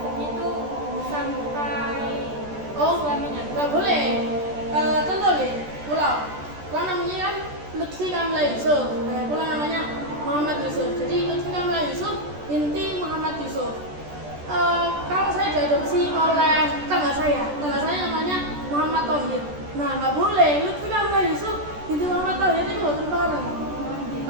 itu sampai suaminya. Nggak boleh. Contoh deh, pulau namanya kan Lutfi Kamila Yusuf. Pulau namanya Muhammad Yusuf. Jadi Lutfi Kamila Yusuf binti Muhammad Yusuf. Kalau saya diadopsi oleh tangga saya namanya Muhammad Tauhid. Nah, nggak boleh. Lutfi Kamila Yusuf binti Muhammad Tauhid itu nggak bareng.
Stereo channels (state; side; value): late; left; 14 ms